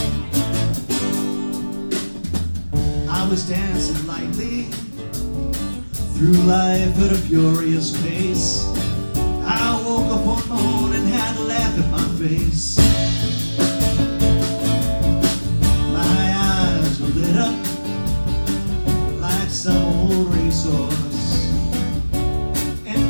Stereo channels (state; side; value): inverted; both; correlation -1.00